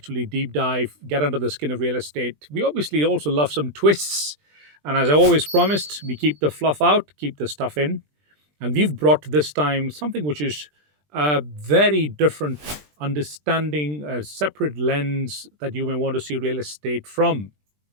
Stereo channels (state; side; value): late; left; 20 ms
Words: deep dive, get under the skin of real estate. We obviously also love some twists. And as I always promised, we keep the fluff out, keep the stuff in. And we've brought this time something which is a very different understanding, a separate lens that you may want to see real estate from.